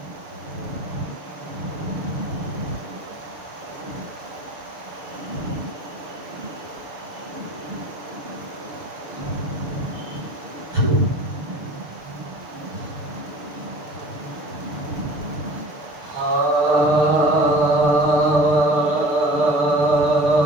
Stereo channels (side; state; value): left; late; 6.7 ms